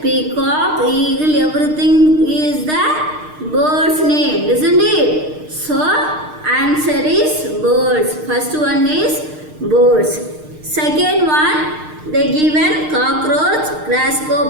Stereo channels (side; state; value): left; late; 6.5 ms